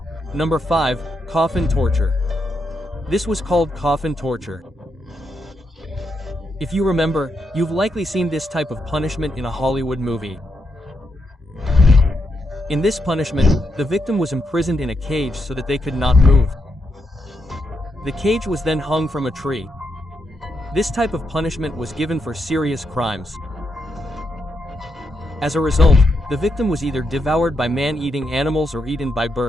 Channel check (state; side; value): normal; both; correlation 0.82